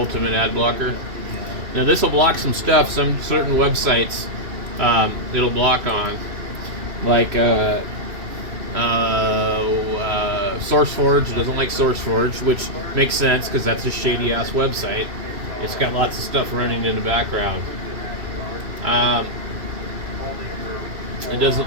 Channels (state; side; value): late; left; 2.6 ms